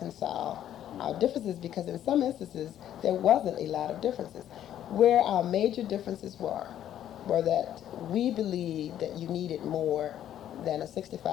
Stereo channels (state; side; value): quieter; right; 11.1 dB